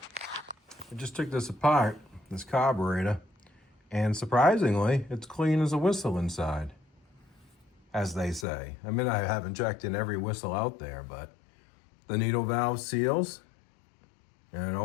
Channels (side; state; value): right; drops out; at 8.5 s